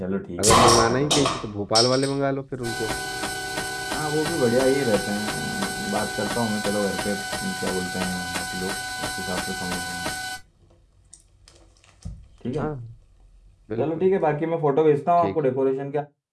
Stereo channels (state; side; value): identical; both; correlation 1.00